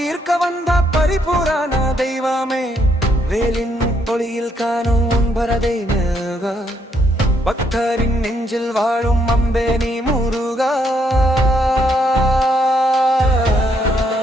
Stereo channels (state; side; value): normal; both; correlation 0.73